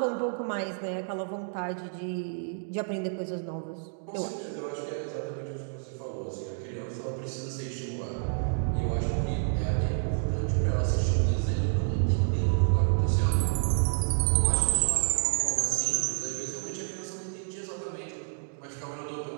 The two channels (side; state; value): left; silent; digital silence